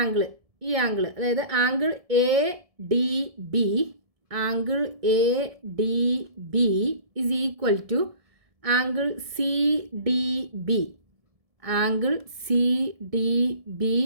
ആംഗിൾ, ഈ ആംഗിൾ, അതായത് angle A D B is equal to angle C D B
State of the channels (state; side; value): late; left; 1.7 ms